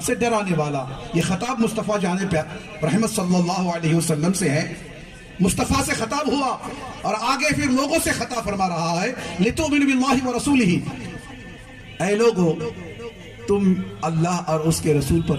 سے ڈرانے والا۔ یہ خطاب مصطفیٰ جان رحمت صلی اللہ علیہ وسلم سے ہے، مصطفیٰ سے خطاب ہوا اور آگے پھر لوگوں سے خطاب فرما رہا ہے، لِتُؤْمِنُوا بِاللَّهِ وَرَسُولِهِ، اے لوگو تم اللہ اور اس کے رسول پر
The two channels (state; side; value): identical; both; correlation 1.00